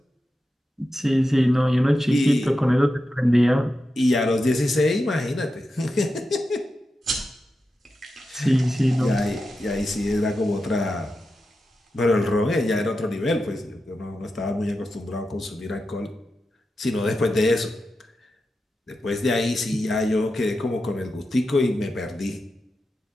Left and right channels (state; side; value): normal; both; correlation 0.90